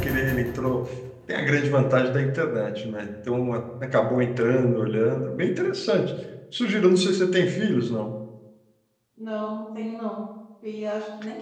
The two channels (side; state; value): both; identical; correlation 1.00